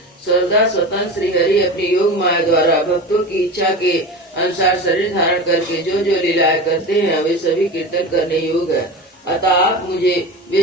सर्वदा स्वतंत्र श्री हरि अपनी योग माया द्वारा भक्तों की इच्छा के अनुसार शरीर धारण करके जो जो लीलाएं करते हैं वे सभी कीर्तन करने योग्य है। अतः आप मुझे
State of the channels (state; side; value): normal; both; correlation 0.29